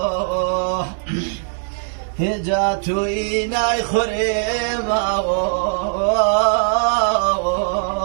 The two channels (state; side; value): silent; left; 66 dB below the other